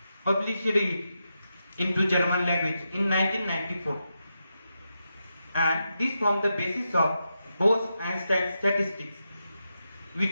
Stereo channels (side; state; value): both; inverted; correlation -0.87